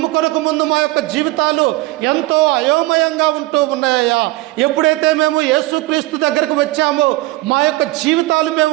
ముందు మా యొక్క జీవితాలు ఎంతో అయోమయంగా ఉంటూ ఉన్నాయ్యా, ఎప్పుడైతే మేము యేసుక్రీస్తు దగ్గరకు వచ్చామో మా యొక్క జీవితాలు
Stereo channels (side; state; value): left; quieter; 19.8 dB